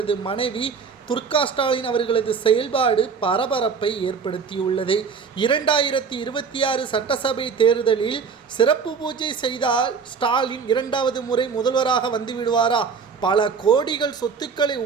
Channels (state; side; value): quieter; left; 5.7 dB